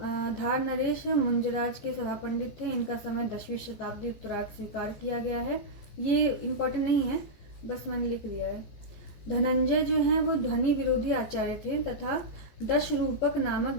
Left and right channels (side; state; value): right; late; 15 ms